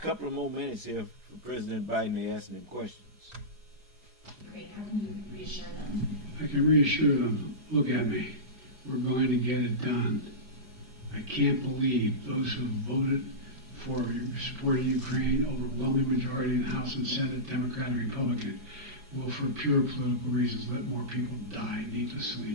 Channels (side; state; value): left; late; 4.8 ms